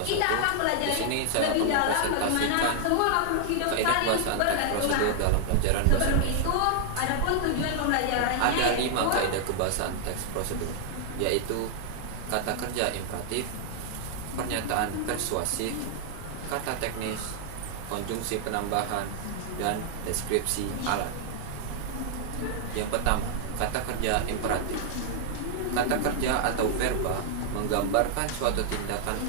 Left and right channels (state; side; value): different; both; correlation -0.01